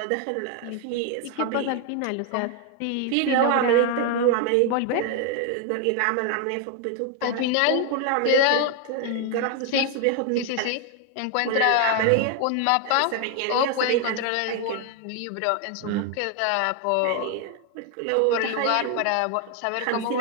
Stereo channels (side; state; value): both; different; correlation 0.01